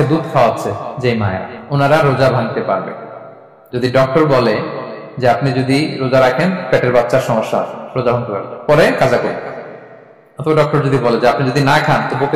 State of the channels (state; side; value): identical; both; correlation 1.00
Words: দুধ খাওয়াচ্ছে যে মায়েরা, ওনারা রোজা ভাঙতে পারবে। যদি ডক্টর বলে যে আপনি যদি রোজা রাখেন পেটের বাচ্চার সমস্যা আছে, রোজা ভাঙতে পারবে, পরে কাজা করবে। অথবা ডক্টর যদি বলে যে আপনি যদি না খান তো